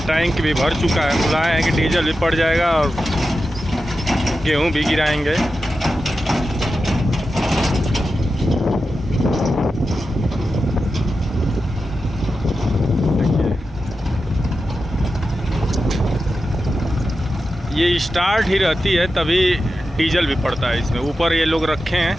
टैंक भी भर चुका है। बुलाए हैं कि डीजल भी पड़ जाएगा और गेहूं भी गिराएंगे। ये स्टार्ट ही रहती है तभी डीजल भी पड़ता है इसमें। ऊपर ये लोग रखे हैं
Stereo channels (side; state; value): both; normal; correlation 0.91